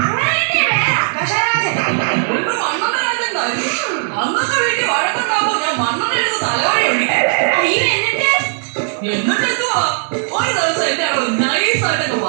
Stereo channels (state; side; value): silent; left; digital silence